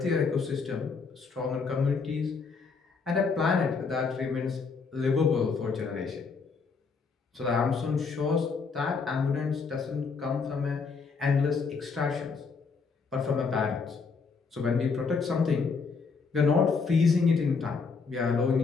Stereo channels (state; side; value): quieter; right; 4.9 dB